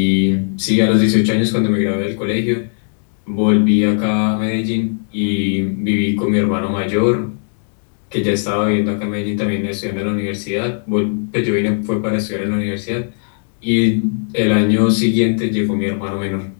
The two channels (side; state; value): right; silent; digital silence